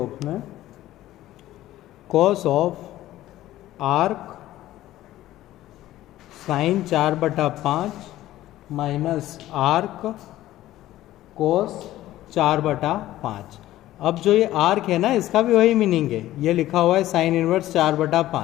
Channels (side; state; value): right; quieter; 14.7 dB